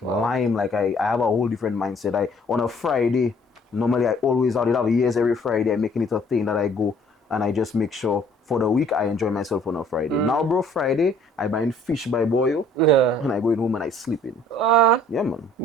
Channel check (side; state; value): both; normal; correlation 0.57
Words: lime. Like I have a whole different mindset. On a Friday, normally I always out. It have years every Friday. I'm making it a thing that I go and I just make sure for the week I enjoy myself on a Friday. Now, bro, Friday I buying fish by boil Yeah. and I go in home and I sleep in. Yeah, man.